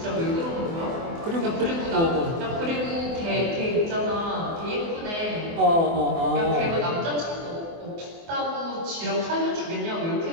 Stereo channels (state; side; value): late; left; 24 ms